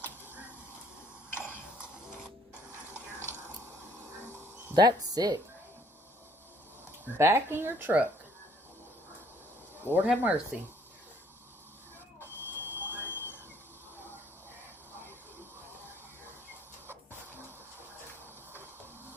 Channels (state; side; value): normal; both; correlation 0.62